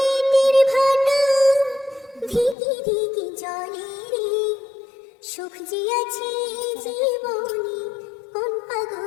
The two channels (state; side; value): drops out; right; at 2.6 s